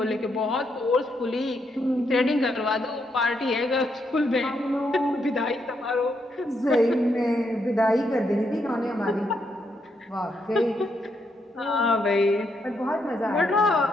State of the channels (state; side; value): normal; both; correlation 0.78